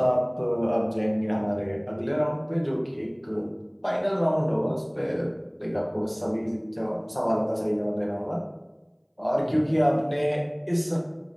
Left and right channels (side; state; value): both; identical; correlation 1.00